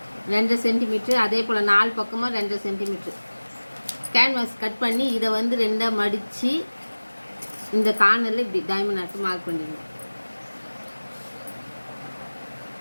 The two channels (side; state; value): both; inverted; correlation -1.00